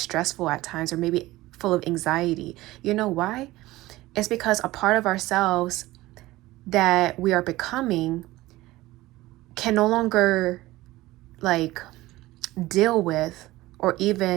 at times, or maybe full of anxiety. You know why? It's because a part of ourselves that we are becoming can no longer like deal with or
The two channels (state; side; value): quieter; left; 18.0 dB